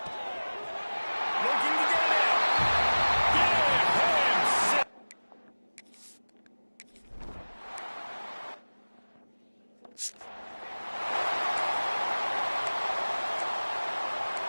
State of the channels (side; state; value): both; inverted; correlation -1.00